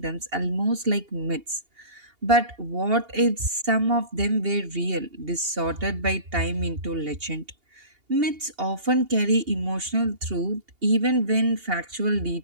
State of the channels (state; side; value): late; left; 2.8 ms